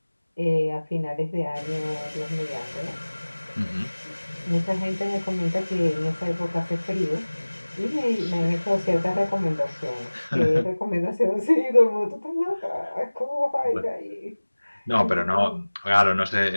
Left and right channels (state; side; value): inverted; both; correlation -1.00